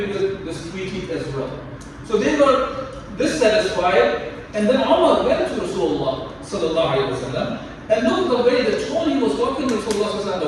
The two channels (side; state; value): both; identical; correlation 1.00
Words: with this treaty as well. So they were dissatisfied, and then Umar went to Rasulullah sallallahu alaihi wasallam, and look at the way, the tone he was talking to Rasulullah sallallahu alaihi